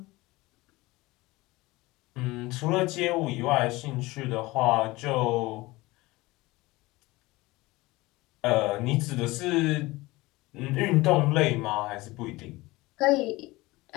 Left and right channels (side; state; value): right; quieter; 20.7 dB